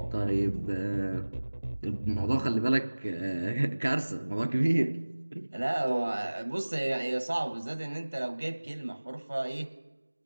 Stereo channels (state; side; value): inverted; both; correlation -1.00